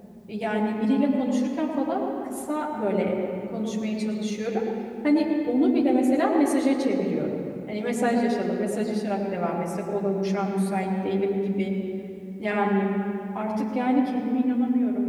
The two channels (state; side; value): identical; both; correlation 1.00